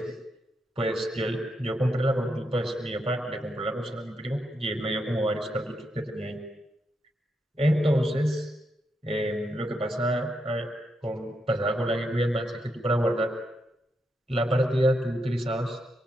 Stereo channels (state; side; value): normal; both; correlation 0.82